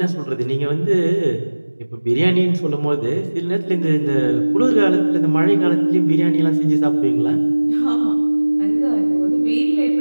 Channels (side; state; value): both; inverted; correlation -1.00